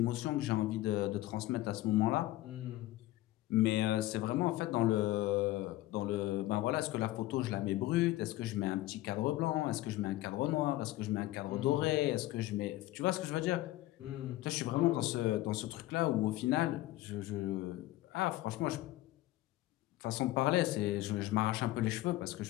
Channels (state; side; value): quieter; right; 16.6 dB